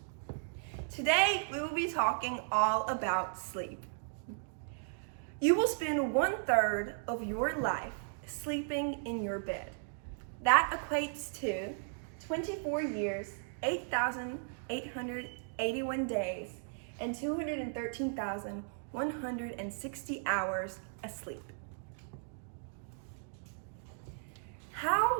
Today, we will be talking all about sleep. You will spend 1/3 of your life sleeping in your bed. That equates to 24 years, 8,881 days, and 213,160 hours asleep.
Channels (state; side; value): silent; left; digital silence